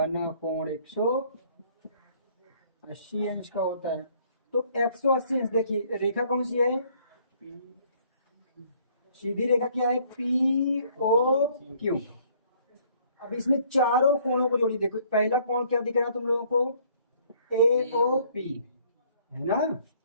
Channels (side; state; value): both; inverted; correlation -0.61